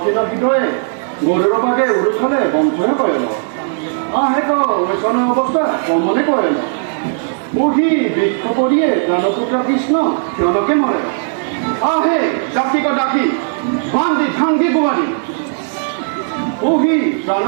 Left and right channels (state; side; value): silent; left; 65 dB below the other